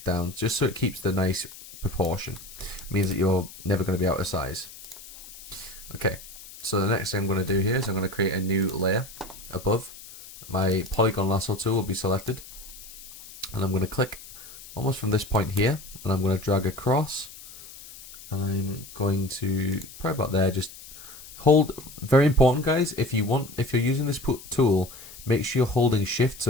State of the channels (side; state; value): left; noise; hiss, 17 dB below the sound